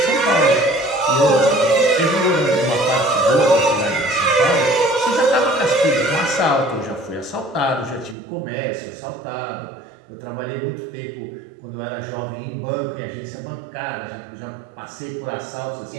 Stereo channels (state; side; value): drops out; left; at 8.2 s